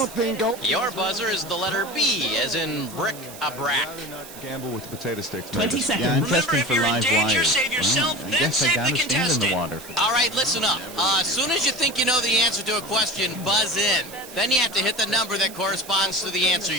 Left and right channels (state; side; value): noise; right; hiss, 16 dB below the sound